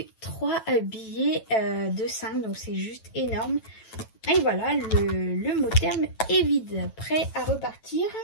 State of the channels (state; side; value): late; right; 9.1 ms